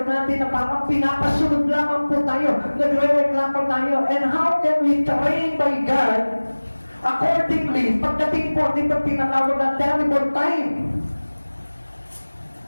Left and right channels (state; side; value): inverted; both; correlation -1.00